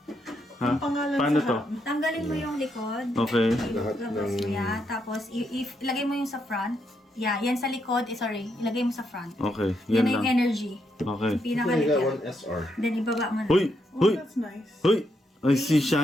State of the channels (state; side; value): normal; both; correlation 0.79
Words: Ha? Ang pangalan Paano sa to? Tanggalin mo yung likod. Okay. Lahat Labas ng- mo yan. Tapos, ilagay mo yung sa front. Yeah, yan sa likod. Sorry. Ilagay mo sa front. Okay, Yan yan na yung lang. energy. Okay. Yung pinakalikod. 1SR. Then, ibaba mo na. Hoy! Oh, Hoy! that's nice. Hoy! I see